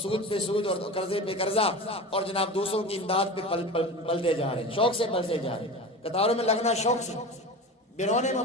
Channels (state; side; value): normal; both; correlation 0.30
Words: سود پہ سود اور قرضے پہ قرضہ اور جناب دوسروں کی امداد پہ پلتے جا رہے ہیں، شوق سے پلتے جا رہے ہیں، قطاروں میں لگنا شوق سے۔ بیرون